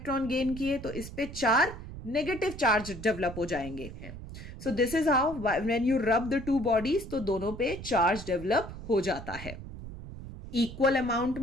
गेन किए तो इस पे 4 नेगेटिव चार्ज डेवलप हो जाएंगे। So this is how when you rub the two bodies तो दोनों पे चार्ज डेवलप हो जाता है इक्वल अमाउंट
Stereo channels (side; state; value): right; noise; rumble, 11 dB below the sound